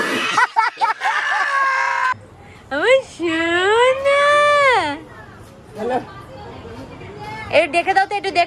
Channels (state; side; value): identical; both; correlation 1.00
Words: আমার সোনা। একটু দেখে দাও তো, একটু